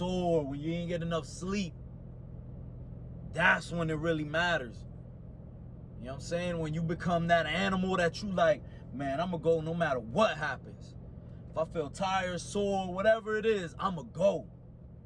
when you ain't get enough sleep? That's when it really matters. You know what I'm saying? When you become that animal that you like, man, I'm going to go no matter what happens. If I feel tired, sore, whatever it is, I'm going to go.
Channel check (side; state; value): both; identical; correlation 1.00